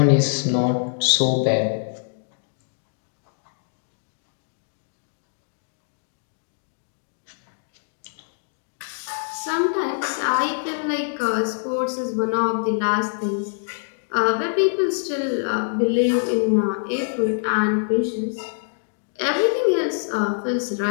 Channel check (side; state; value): right; silent; digital silence